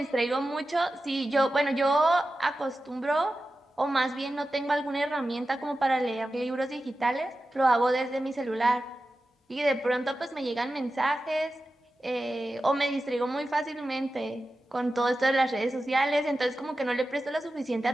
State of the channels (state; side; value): normal; both; correlation 0.93